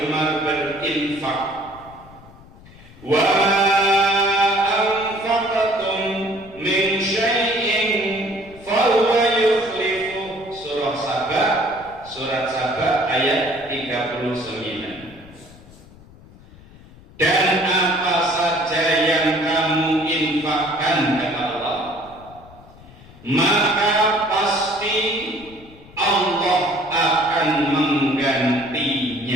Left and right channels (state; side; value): noise; left; rumble, 22 dB below the sound